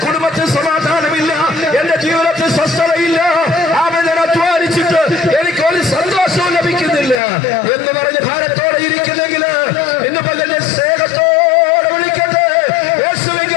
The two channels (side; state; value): right; drops out; at 7.2 s